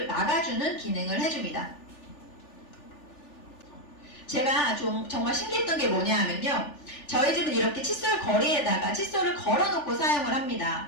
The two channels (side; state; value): right; late; 3.4 ms